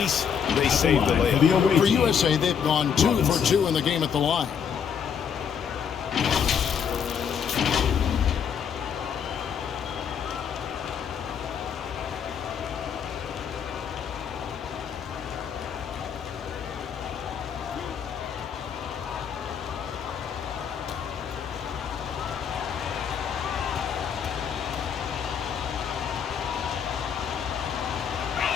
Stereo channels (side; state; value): right; quieter; 7.4 dB